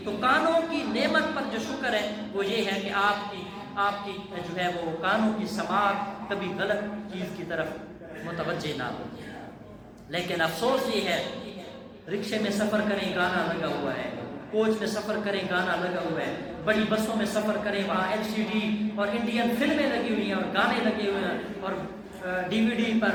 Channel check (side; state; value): both; identical; correlation 1.00